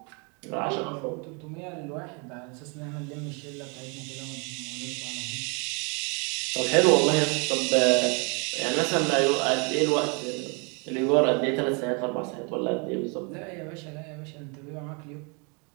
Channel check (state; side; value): quieter; left; 33.4 dB